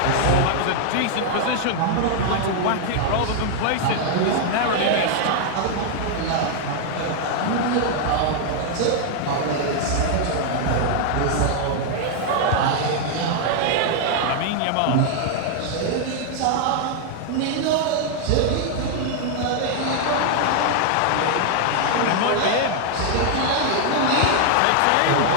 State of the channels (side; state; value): both; different; correlation 0.00